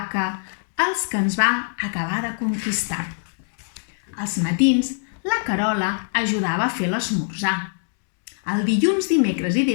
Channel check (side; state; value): right; silent; digital silence